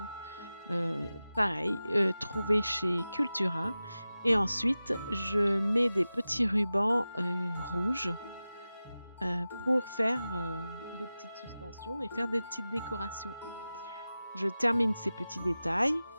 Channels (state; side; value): inverted; both; correlation -0.95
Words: pareil, trouvé chez Cultura et ensuite je mets des petits rubans, rouges, pour faire, des petites suspensions et faire des petites décorations. Je termine ces petits détails